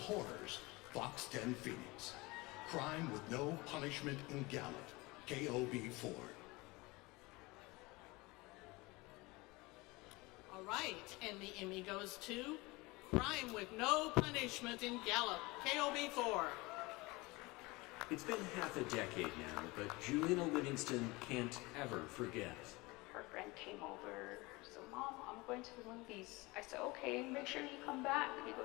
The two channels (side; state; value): right; quieter; 23.3 dB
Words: Fox 10 Phoenix, Crime with No Punishment in Gallup, KOB4. All right, and the Emmy goes to Crime with No Punishment in Gallup, KOB4. It's been half a decade now, but Juliana Livingston can't ever forget. Her friend came over, so Mom, I'm going to the movies. I said, okay, make sure you come back. He